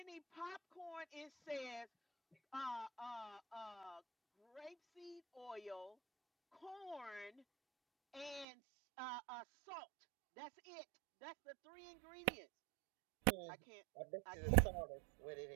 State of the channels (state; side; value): drops out; left; at 8.5 s